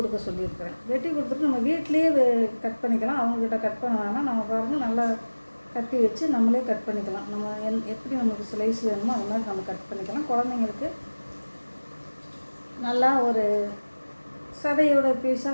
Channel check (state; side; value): inverted; both; correlation -1.00